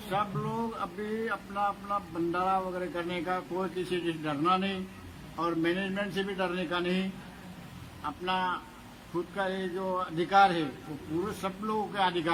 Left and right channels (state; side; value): identical; both; correlation 1.00